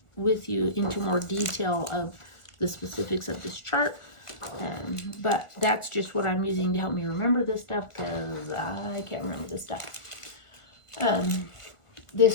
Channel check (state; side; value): late; right; 1.4 ms